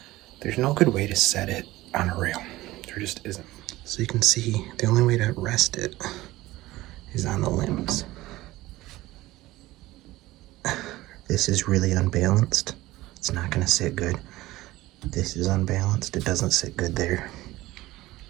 there's no good way to set it on a rail. There just isn't. So you can see the only way to rest it is on the limbs. This is really unbalanced. It's not gonna sit good. This is unbalanced. It doesn't sit good there.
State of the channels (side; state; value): left; quieter; 17.8 dB